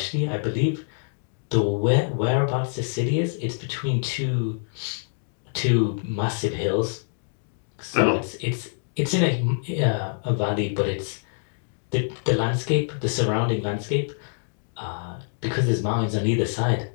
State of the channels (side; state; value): right; silent; digital silence